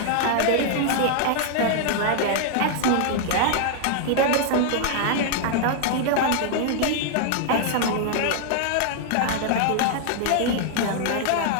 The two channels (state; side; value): different; both; correlation 0.00